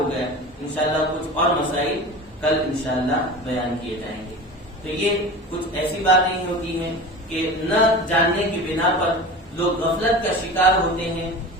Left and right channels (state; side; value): normal; both; correlation 0.33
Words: گیا. انشاءاللہ کچھ اور مسائل کل انشاءاللہ بیان کیے جائیں گے. تو یہ کچھ ایسی باتیں ہوتی ہیں کہ نہ جاننے کی بنا پر لوگ غفلت کا شکار ہوتے ہیں